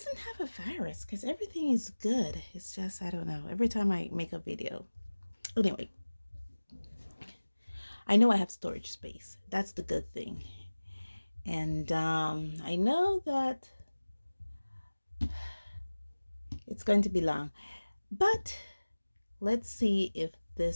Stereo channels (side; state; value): both; inverted; correlation -1.00